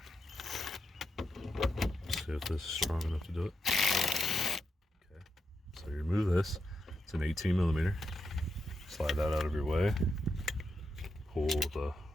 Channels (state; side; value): normal; both; correlation 0.85